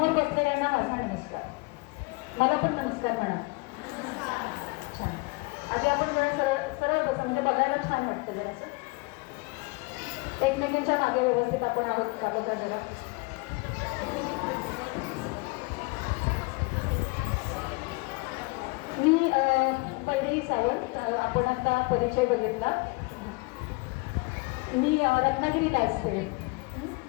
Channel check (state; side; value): quieter; right; 27.3 dB